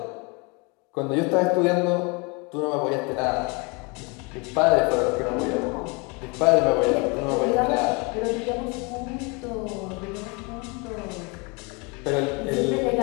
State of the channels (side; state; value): right; quieter; 30.1 dB